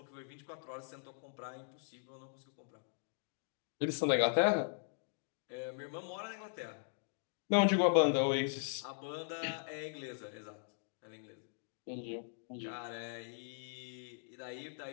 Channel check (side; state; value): right; silent; digital silence